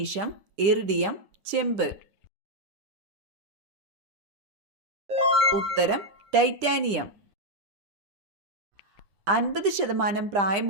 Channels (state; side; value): late; left; 10 ms